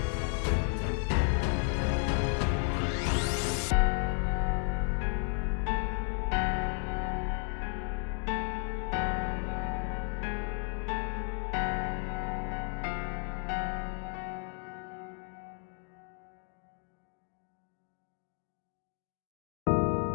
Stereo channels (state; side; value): quieter; right; 39.3 dB